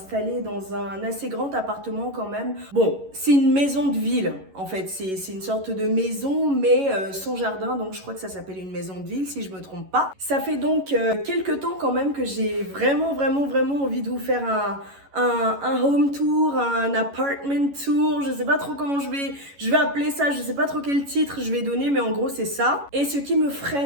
dans un assez grand appartement quand même. Bon, c'est une maison de ville en fait. C'est une sorte de maison mais sans jardin. Donc je crois que ça s'appelle une maison de ville si je me trompe pas. Ça fait donc quelques temps quand même que j'ai vraiment envie de vous faire un home tour, un apartment tour, je sais pas trop comment je vais appeler ça, je sais pas trop quel titre je vais donner, mais en gros c'est ça. Et ce qui me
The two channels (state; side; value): late; left; 11 ms